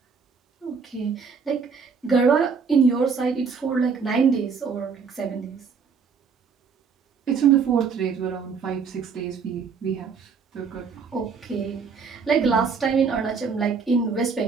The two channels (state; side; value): quieter; left; 5.6 dB